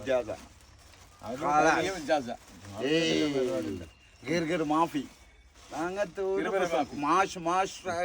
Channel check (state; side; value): identical; both; correlation 1.00